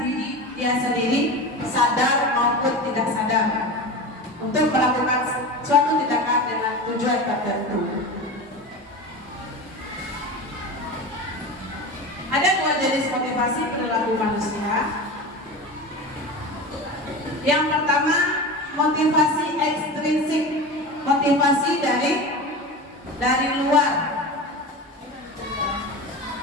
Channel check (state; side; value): normal; both; correlation 0.28